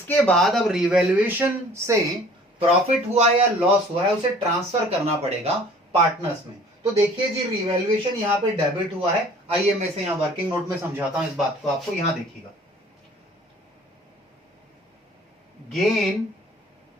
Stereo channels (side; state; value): both; normal; correlation 0.51